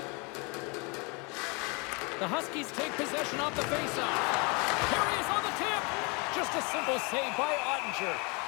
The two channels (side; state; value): right; quieter; 30.9 dB